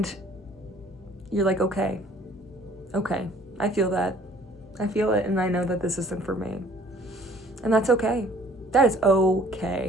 you're like, okay, I feel that. I feel it, and I know that this isn't for me. And that's okay. That is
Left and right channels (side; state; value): both; normal; correlation 0.55